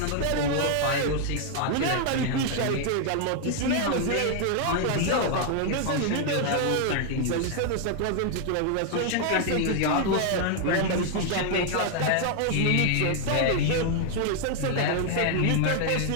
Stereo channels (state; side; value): different; both; correlation 0.00